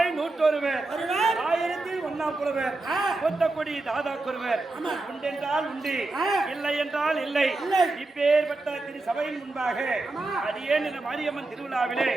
101 ஆயிரத்தில் ஒன்னாம் புலவர் கொத்தக்குடி தாதா குருவர் உண்டென்றால் உண்டு இல்லை என்றால் இல்லை இப்பேற்பட்ட திரு சபையின் முன்பாக அடியேன் இந்த மாரியம்மன் திருவிழாவிலே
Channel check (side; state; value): left; quieter; 3.1 dB